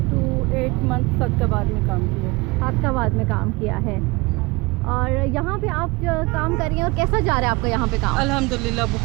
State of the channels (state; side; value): quieter; left; 24.8 dB